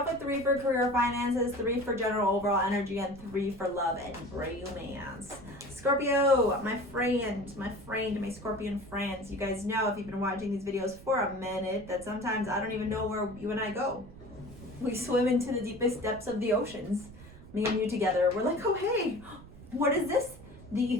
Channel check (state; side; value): noise; right; rumble, 18 dB below the sound